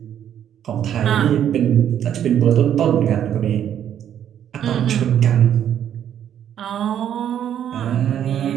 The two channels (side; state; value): left; quieter; 9.9 dB